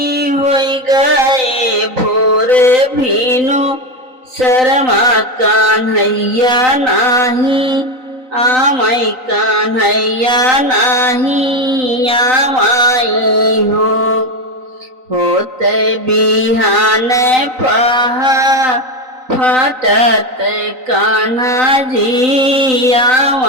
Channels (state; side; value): late; left; 3.9 ms